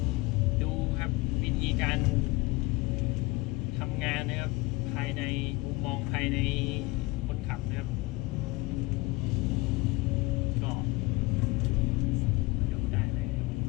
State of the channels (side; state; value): right; quieter; 22.8 dB